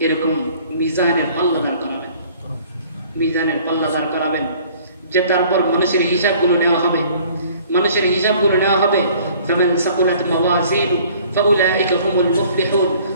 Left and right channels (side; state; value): both; inverted; correlation -0.54